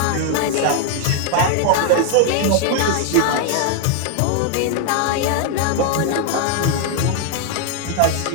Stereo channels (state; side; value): different; both; correlation 0.00